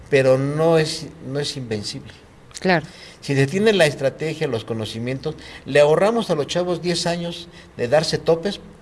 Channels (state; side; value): identical; both; correlation 1.00